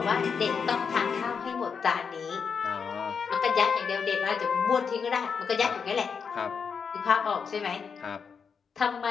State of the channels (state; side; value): quieter; right; 6.1 dB